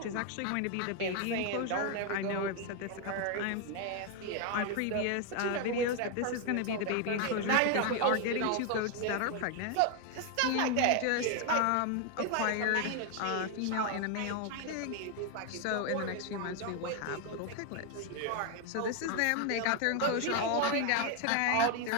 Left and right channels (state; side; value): different; both; correlation 0.01